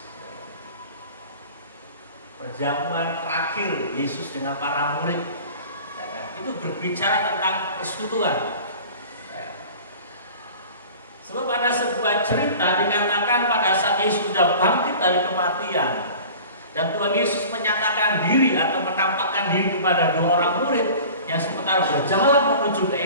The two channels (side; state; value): both; inverted; correlation -0.42